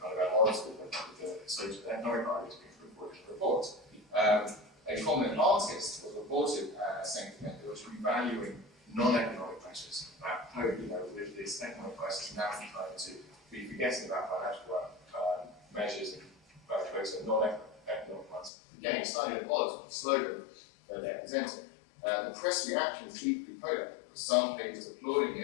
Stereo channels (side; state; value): right; drops out; at 18.5 s